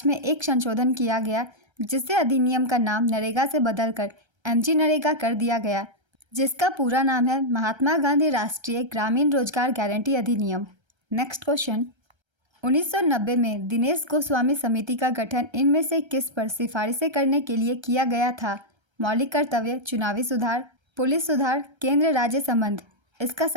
में एक संशोधन किया गया जिससे अधिनियम का नाम नरेगा से बदलकर एमजी नरेगा कर दिया गया, जिसका पूरा नाम है महात्मा गांधी राष्ट्रीय ग्रामीण रोजगार गारंटी अधिनियम। नेक्स्ट क्वेश्चन, 1990 में दिनेश गोस्वामी समिति का गठन इनमें से किस पर सिफारिशें करने के लिए किया गया था? मौलिक कर्तव्य, चुनावी सुधार, पुलिस सुधार, केंद्र राज्य संबंध। इसका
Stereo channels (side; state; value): left; late; 1.3 ms